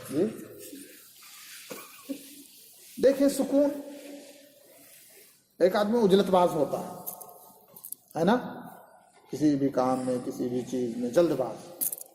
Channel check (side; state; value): both; identical; correlation 1.00